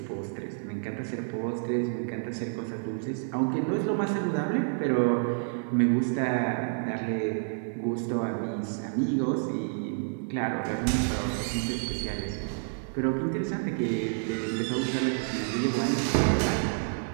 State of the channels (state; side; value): silent; left; digital silence